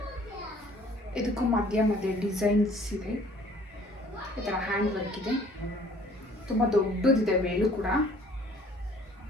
ಇದಕ್ಕೂ ಮಧ್ಯ ಡಿಸೈನ್ಸ್ ಇದೆ, ಈ ಥರ ಹ್ಯಾಂಡ್ ವರ್ಕ್ ಇದೆ. ತುಂಬ ದೊಡ್ಡದಿದೆ ವೇಲು ಕೂಡ.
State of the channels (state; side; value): normal; both; correlation 0.55